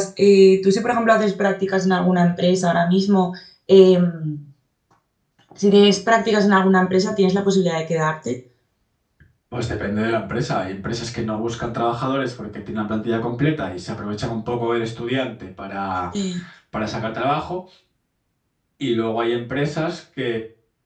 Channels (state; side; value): identical; both; correlation 1.00